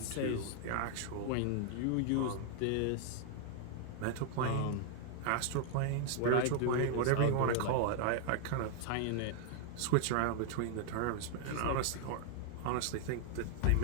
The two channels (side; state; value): both; different; correlation 0.00